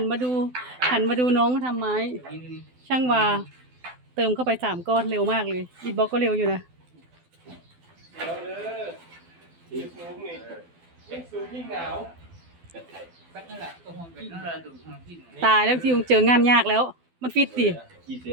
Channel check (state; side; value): late; left; 12 ms